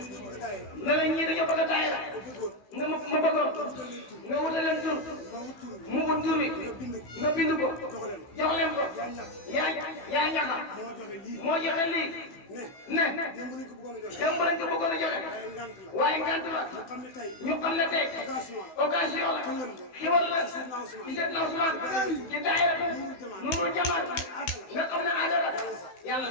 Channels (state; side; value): late; right; 16 ms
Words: ne la ñii dañoo bëgg a daayira nga ma bëggoon nga wutal leen tur mu wut tur wi nga bind ko jox leen ko yaa ñaxa moo joxe lii ne démb lañ ko bëggoon a joxe waaye ngant la ñu xam ne tey occasion la xiwal la ci Seydina Ousmane ci daayira Nuurul Jamaat nga xam ne àndala yàlla